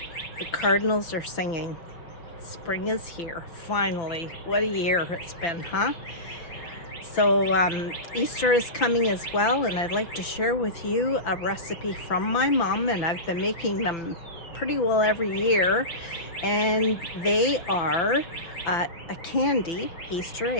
The cardinals are singing. Spring is here, finally. What a year it's been, huh? So Easter is coming as well, and I'd like to share with you a recipe from my mom, and I've been making them pretty well every year. And they are a candy Easter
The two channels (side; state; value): right; late; 5.9 ms